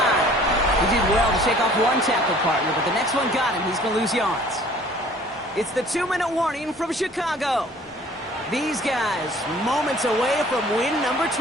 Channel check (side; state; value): both; normal; correlation 0.52